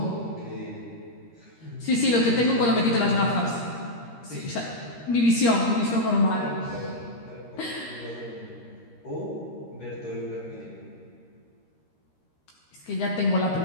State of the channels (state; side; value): late; right; 13 ms